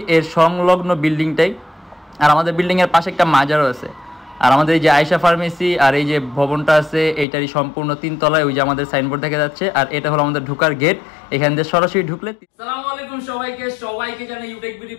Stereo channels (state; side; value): drops out; right; at 7.2 s